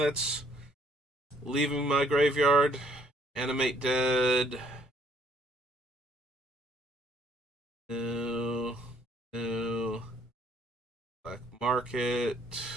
leaving my graveyard? Animate Dead. No. No. Black Market.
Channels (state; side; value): normal; both; correlation 0.64